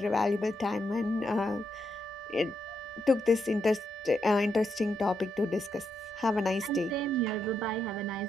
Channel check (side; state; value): both; normal; correlation 0.81